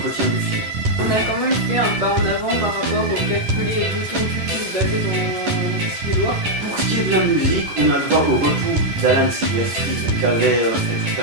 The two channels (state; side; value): late; left; 10 ms